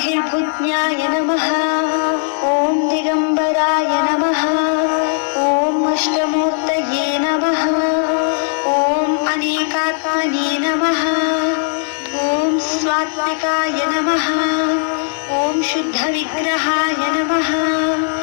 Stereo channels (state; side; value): silent; right; digital silence